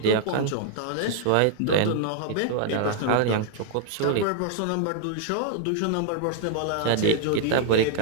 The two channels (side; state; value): both; different; correlation -0.01